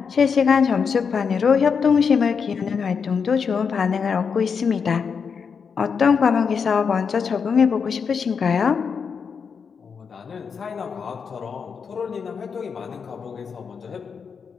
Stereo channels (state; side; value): quieter; right; 6.1 dB